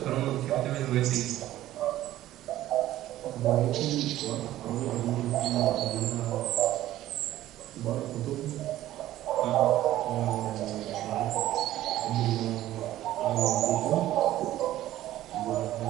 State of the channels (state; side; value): quieter; left; 14.2 dB